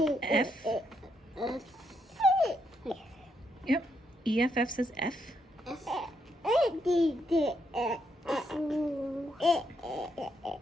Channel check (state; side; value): normal; both; correlation 0.77